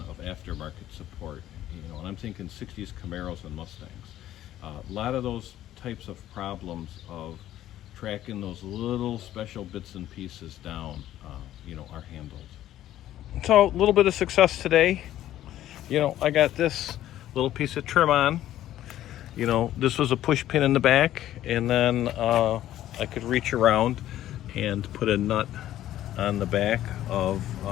of aftermarket support, you know, and I'm thinking 60s Camaros and Mustangs. A lot of those types of problems of tracking those little special bits and pieces down, you know, are handled. So a little bit of success today. You know, I got this little piece of trim on. You know, this was a push pin in the back, and then I could reach around and put a nut on the back of,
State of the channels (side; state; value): right; quieter; 13.0 dB